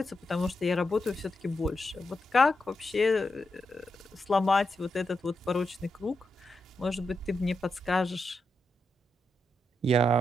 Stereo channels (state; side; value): normal; both; correlation 0.85